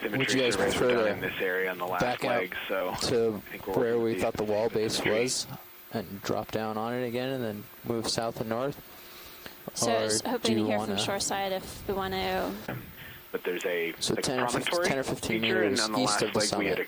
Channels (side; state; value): both; identical; correlation 1.00